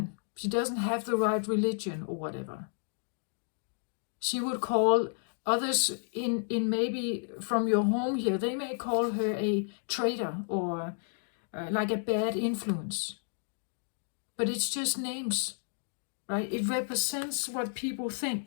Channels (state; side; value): silent; right; digital silence